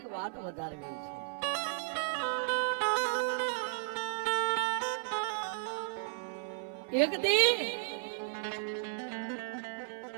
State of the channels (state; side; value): silent; left; 55 dB below the other